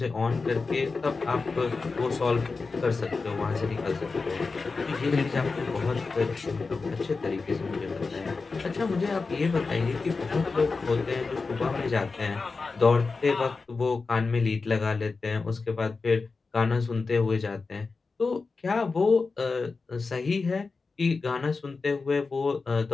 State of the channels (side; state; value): right; quieter; 4.2 dB